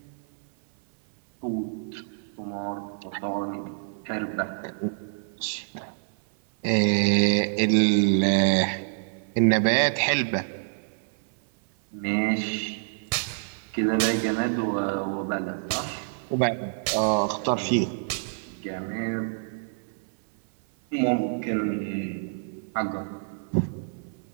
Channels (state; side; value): silent; left; 57 dB below the other